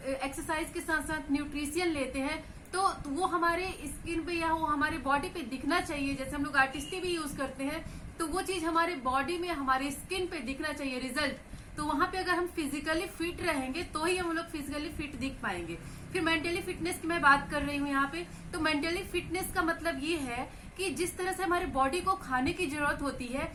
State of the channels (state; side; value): identical; both; correlation 1.00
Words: के साथ साथ न्यूट्रिशियन लेते हैं तो वो हमारे स्किन पे या वो हमारे बॉडी पे दिखना चाहिए। जैसे हम लोग आर्टिस्टी भी यूज करते हैं तो वो चीज हमारे बॉडी में, हमारे स्किन पे दिखना चाहिए रिजल्ट। तो वहां पे अगर हम फिजिकली फिट रहेंगे तो ही हम लोग फिजिकली फिट दिख पाएंगे। फिर मेंटली फिटनेस की मैं बात कर रही हूँ यहाँ पे। तो मेंटली फिटनेस का मतलब ये है कि जिस तरह से हमारे बॉडी को खाने की जरूरत होती है